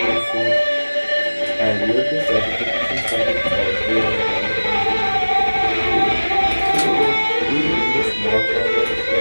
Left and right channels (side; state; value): both; inverted; correlation -1.00